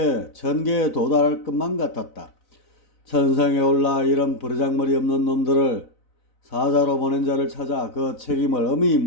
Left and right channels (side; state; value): right; late; 4.0 ms